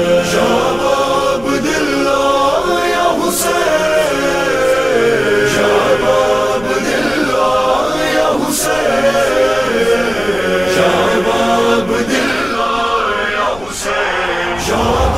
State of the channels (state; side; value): noise; left; rumble, 17 dB below the sound